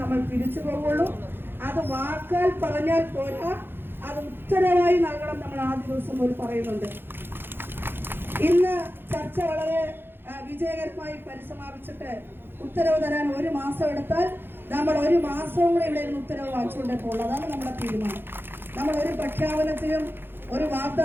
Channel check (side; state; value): left; late; 0.10 ms